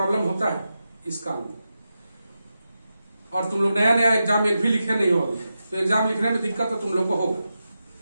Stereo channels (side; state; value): both; inverted; correlation -0.90